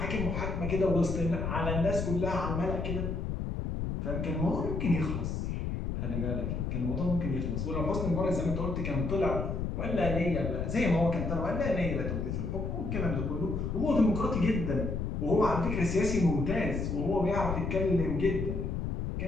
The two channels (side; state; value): left; noise; rumble, 2 dB below the sound